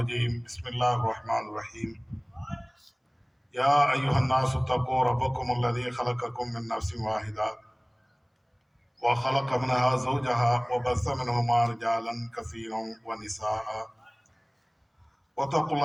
بسم الله الرحمن الرحيم. يا أيها الناس اتقوا ربكم الذي خلقكم من نفس واحدة وخلق منها زوجها وبث منهما رجالا كثيرا ونساء واتقوا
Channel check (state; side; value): identical; both; correlation 1.00